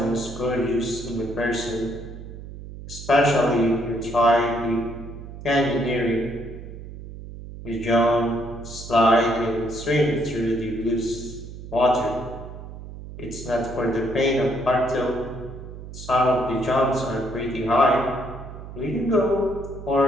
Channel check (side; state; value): right; noise; hum, 12 dB below the sound